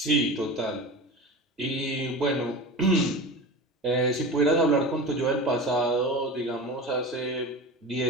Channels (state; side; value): normal; both; correlation 0.31